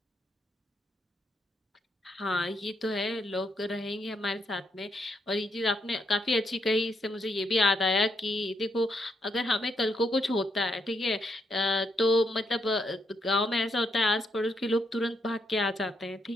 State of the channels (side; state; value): both; normal; correlation 0.77